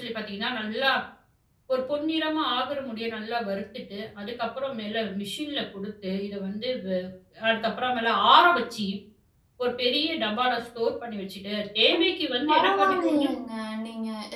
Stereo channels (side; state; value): both; identical; correlation 1.00